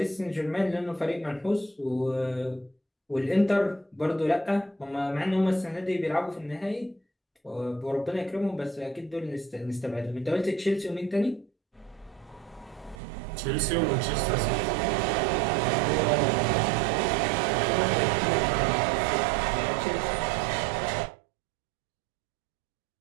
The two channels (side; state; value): left; drops out; at 13.0 s